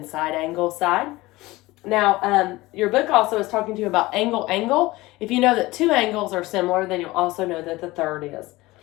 side, angle, side. Now, your book also is talking to you about angle, angle. If you know that 2 angles are similar, then you'll also know that the third is.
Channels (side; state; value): right; quieter; 19.8 dB